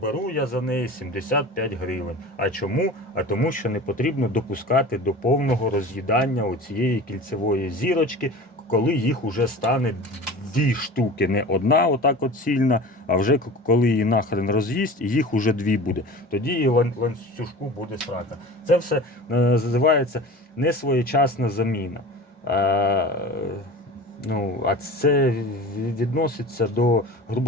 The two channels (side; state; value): both; normal; correlation 0.36